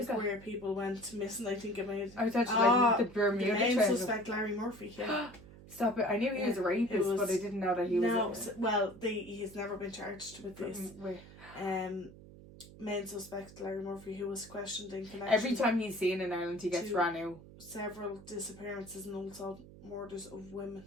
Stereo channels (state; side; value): noise; right; hum, 18 dB below the sound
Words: where people went missing. I think it made. I was actually like the Bermuda Triangle. The main suspect, Larry Murphy. Yeah. Stop it! I knew he was a rapist, but I didn't know that he was. No, well, he's never been charged with this. Main suspect Larry Murphy, who was questioned in connection. Every time he's seen in Ireland, he gets ran out. Several disappearances and also murders of women.